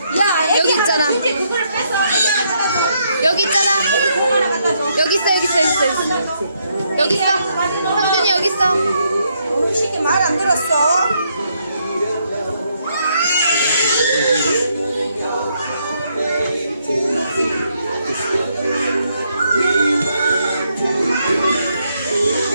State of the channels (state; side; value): inverted; both; correlation -0.75